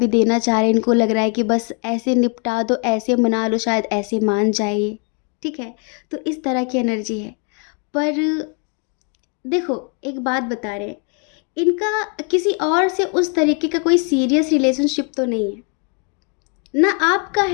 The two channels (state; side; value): quieter; right; 38.3 dB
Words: देना चाह रहे हैं। इनको लग रहा है कि बस ऐसे निपटा दो, ऐसे मना लो, शायद ऐसे मान जाइए। ठीक है, तो इस तरह की एनर्जी है। पर देखो, एक बात बता रहे हैं, इनका किसी और से उस तरीके का कोई सीरियस रिलेशनशिप तो नहीं है ना, आपका